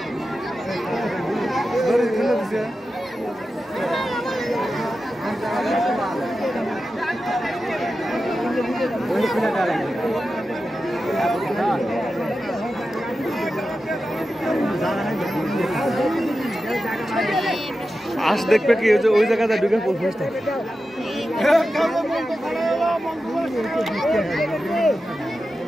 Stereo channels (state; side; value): normal; both; correlation 0.92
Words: হাঁস দেখবে কি ওই জায়গাটা ঢুকে পড়বে।